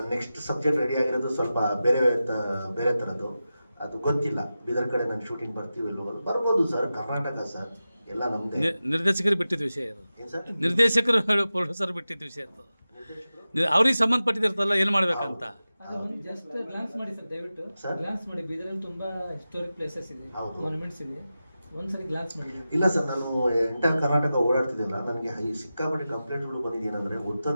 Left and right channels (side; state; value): both; inverted; correlation -0.93